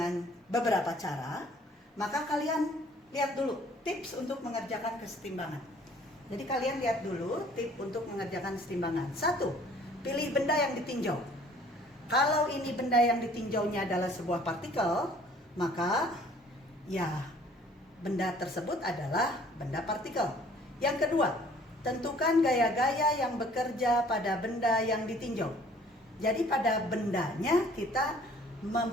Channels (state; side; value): normal; both; correlation 0.55